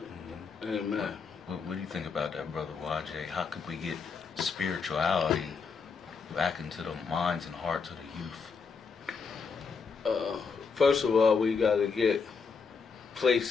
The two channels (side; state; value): right; quieter; 5.3 dB